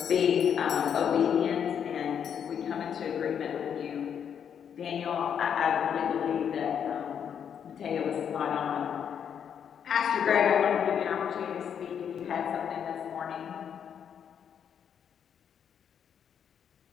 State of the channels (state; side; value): quieter; right; 8.1 dB